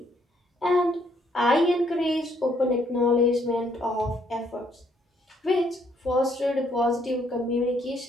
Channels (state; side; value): normal; both; correlation 0.69